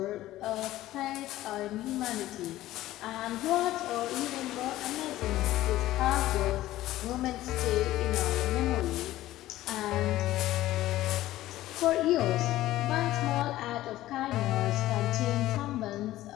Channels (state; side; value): quieter; right; 15.3 dB